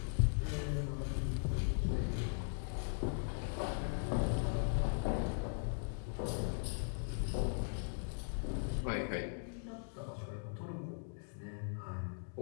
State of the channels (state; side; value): silent; right; digital silence